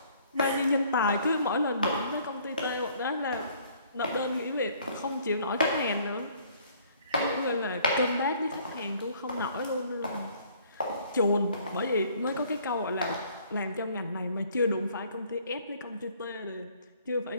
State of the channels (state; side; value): inverted; both; correlation -0.59